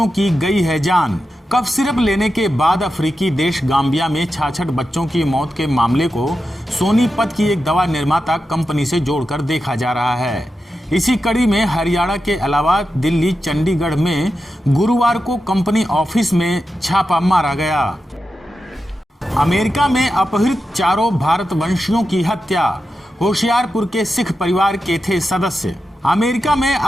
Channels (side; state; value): both; normal; correlation 0.90